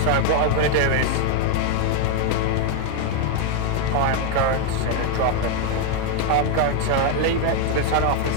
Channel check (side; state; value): both; different; correlation 0.01